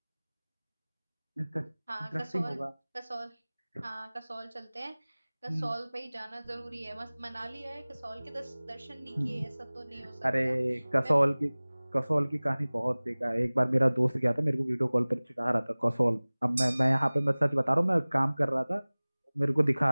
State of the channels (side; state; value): both; inverted; correlation -1.00